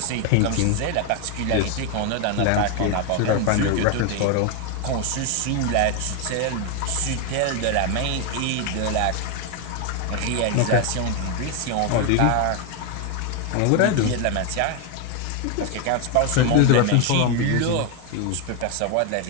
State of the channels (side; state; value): both; different; correlation 0.01